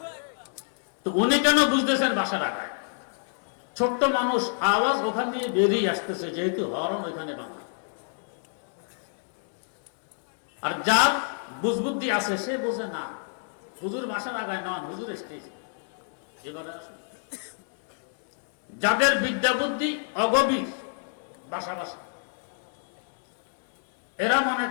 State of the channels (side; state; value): right; silent; 59 dB below the other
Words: তো উনি কেন বুঝতেছেন বাঁশের আগায়? ছোট্ট মানুষ, আওয়াজ ওখান দিয়ে বেরিয়ে আসতেছে, যেহেতু হরন ওইখানে বাঁধা। আর যার বুঝবুদ্ধি আছে সে বোঝে না, হুজুর বাঁশের আগায় নয়, হুজুর স্টেজ। এবারে আসুন, যাদের বিদ্যা বুদ্ধি অগভীর, বাসা বাসা, এরা মনে